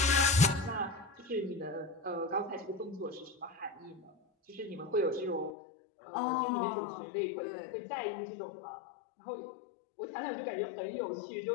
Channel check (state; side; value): drops out; right; at 5.6 s